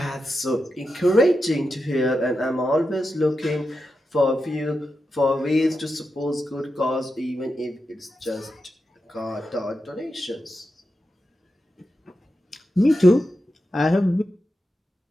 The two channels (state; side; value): normal; both; correlation 0.89